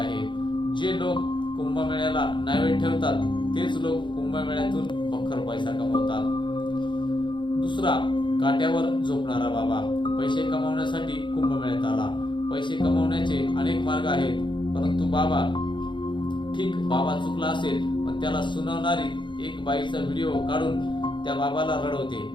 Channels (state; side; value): late; right; 0.23 ms